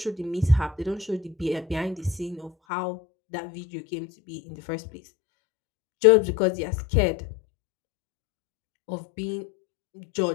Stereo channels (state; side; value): drops out; right; at 2.5 s